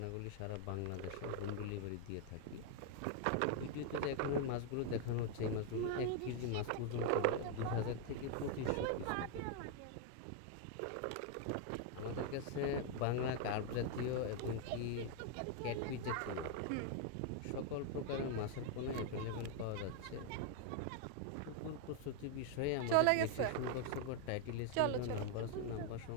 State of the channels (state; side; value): different; both; correlation 0.00